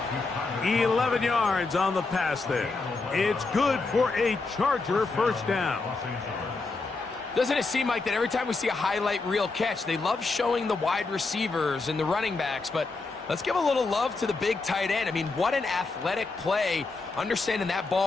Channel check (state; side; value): quieter; right; 3.8 dB